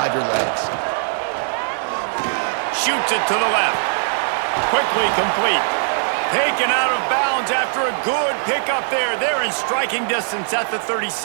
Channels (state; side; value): silent; left; 66 dB below the other